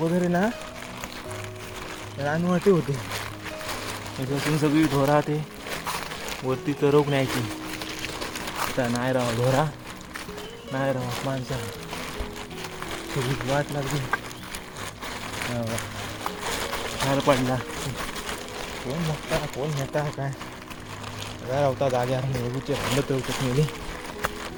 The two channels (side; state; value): both; identical; correlation 1.00